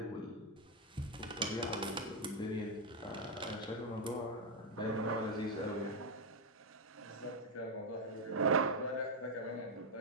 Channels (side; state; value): both; normal; correlation 0.03